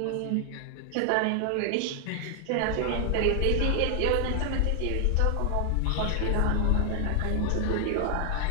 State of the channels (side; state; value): both; different; correlation 0.00